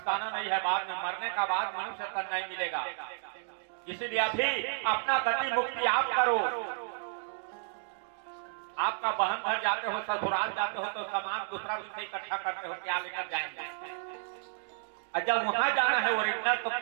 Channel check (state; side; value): silent; left; digital silence